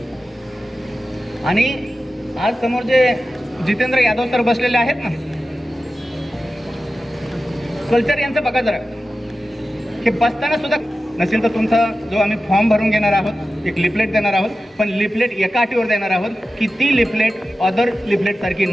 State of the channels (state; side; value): normal; both; correlation 0.93